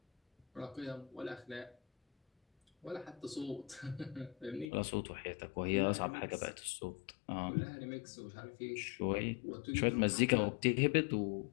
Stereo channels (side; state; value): right; drops out; at 4.7 s